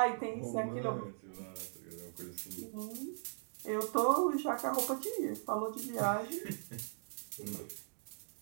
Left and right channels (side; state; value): left; silent; digital silence